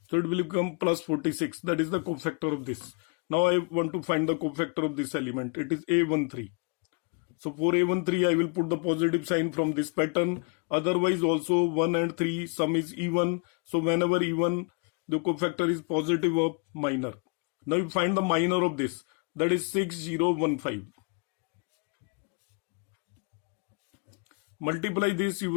So it will become plus 46. That is the cofactor of this. Now I want to find the cofactor of this element. It is A13. So for A13, I will put the positive sign from this pattern. Otherwise also 1 and 3, sum is even. So whenever even, the cofactor is positive of minor. Now you find the minor of this. That is 6015. Multiply this, you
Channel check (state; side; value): quieter; right; 35.6 dB